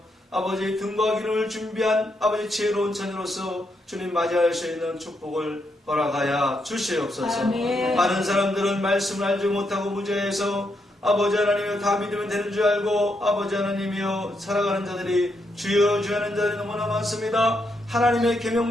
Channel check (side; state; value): both; normal; correlation 0.80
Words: 아버지 등과 기름을 준비한 아버지 지혜로운 자녀로서 주님 맞이할 수 있는 축복을 허락하여 주시옵소서. 아멘. 많은 사람들은 말씀을 알지 못하고 무죄해서 아버지 하나님이여 다 믿으면 되는 줄 알고 아버지 하나님이여 살아가는 자들이 주여 주여 하는 자들이 너무나 많습니다. 하나님의